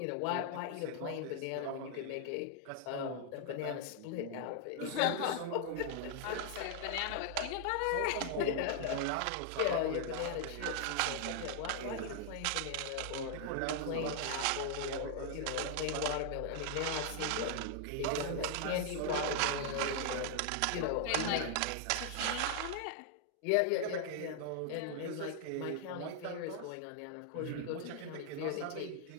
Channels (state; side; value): different; both; correlation 0.00